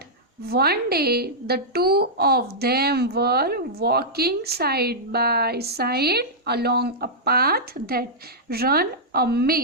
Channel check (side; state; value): both; normal; correlation -0.10